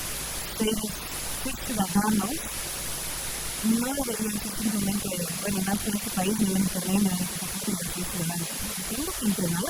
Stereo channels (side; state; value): both; identical; correlation 1.00